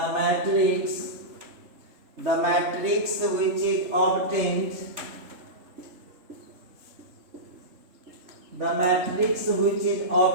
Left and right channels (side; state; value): left; late; 3.4 ms